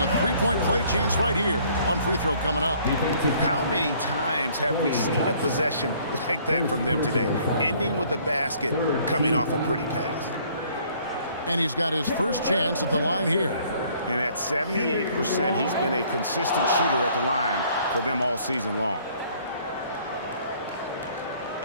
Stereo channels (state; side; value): inverted; both; correlation -0.59